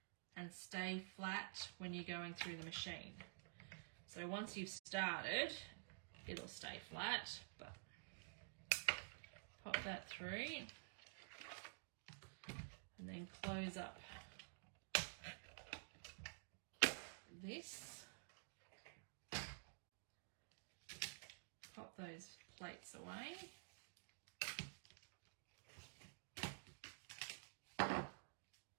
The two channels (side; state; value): left; silent; digital silence